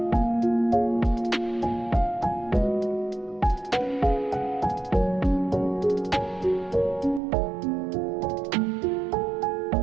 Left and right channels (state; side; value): drops out; left; at 7.2 s